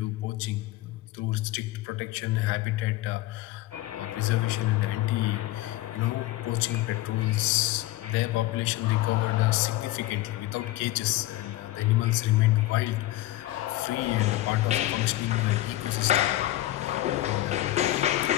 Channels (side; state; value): right; quieter; 16.3 dB